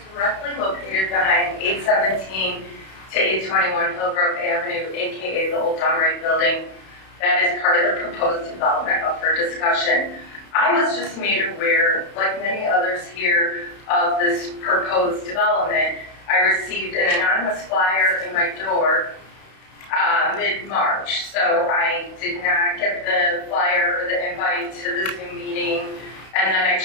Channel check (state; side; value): late; right; 31 ms